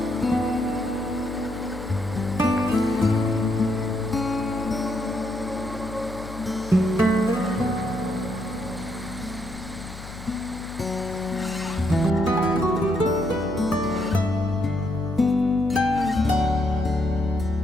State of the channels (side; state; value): left; noise; hum, 13 dB below the sound